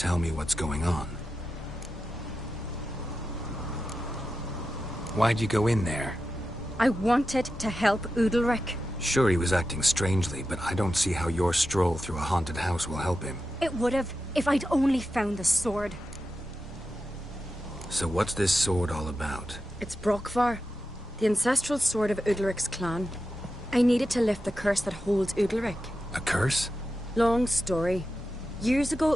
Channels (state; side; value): normal; both; correlation 0.91